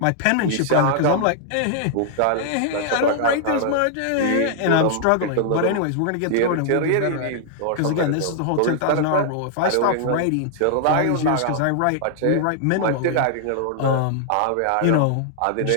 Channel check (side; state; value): both; different; correlation -0.01